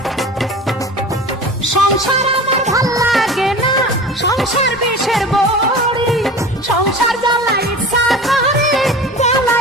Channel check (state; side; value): normal; both; correlation 0.36